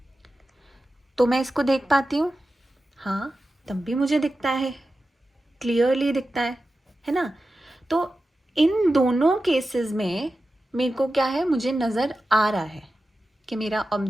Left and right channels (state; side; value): normal; both; correlation 0.93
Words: तो मैं इसको देख पाती हूँ। हाँ, तब भी मुझे दिखता है, क्लियरली दिखता है ना? तो इन दोनों केसेस में मेरे को क्या है, मुझे नज़र आ रहा है कि मेरा